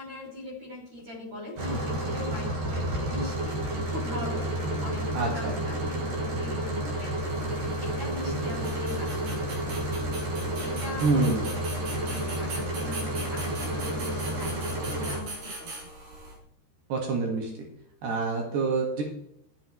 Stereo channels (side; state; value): left; late; 13 ms